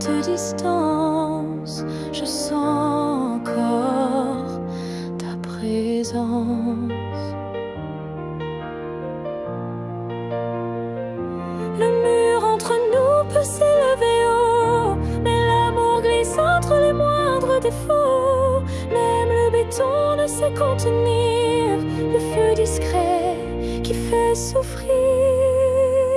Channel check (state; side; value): noise; right; hum, 30 dB below the sound